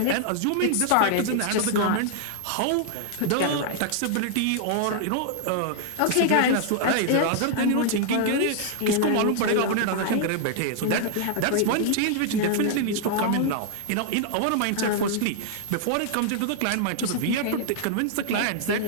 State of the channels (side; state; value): both; different; correlation -0.01